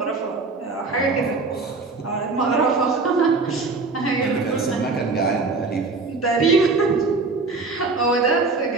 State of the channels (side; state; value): left; quieter; 3.9 dB